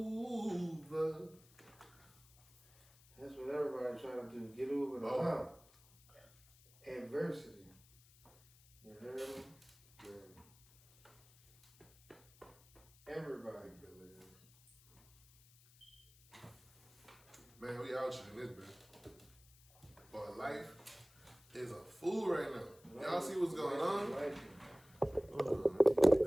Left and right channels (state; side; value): noise; left; hiss, 26 dB below the sound